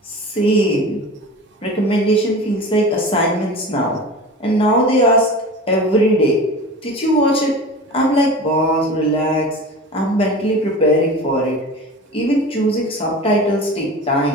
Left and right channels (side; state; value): both; normal; correlation 0.34